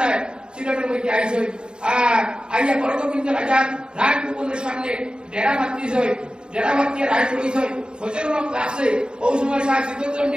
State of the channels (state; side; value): late; left; 0.049 ms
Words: সিলেটের মধ্যে আইছে আর আইয়া বড়গোবিন্দ রাজার রাজভবনের সামনে ডেরা বাঁধিয়েছে যারা বাকি রায় করেছে সচেতন আছে ওই সময় শাহ